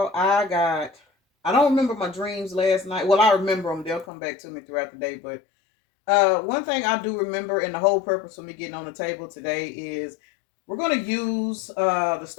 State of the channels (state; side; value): drops out; right; at 4.0 s